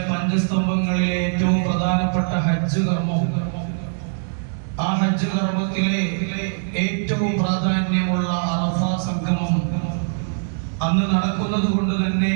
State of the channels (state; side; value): silent; left; digital silence